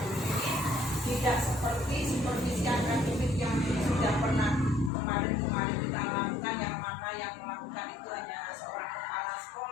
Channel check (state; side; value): drops out; right; at 4.9 s